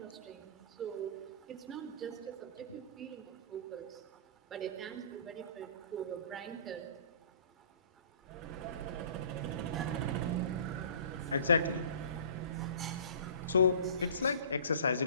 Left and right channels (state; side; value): inverted; both; correlation -0.46